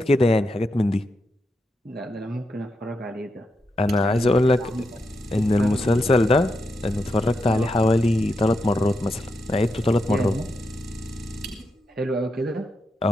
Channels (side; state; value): both; normal; correlation 0.84